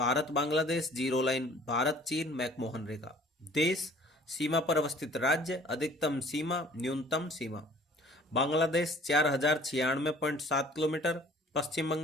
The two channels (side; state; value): both; normal; correlation 0.52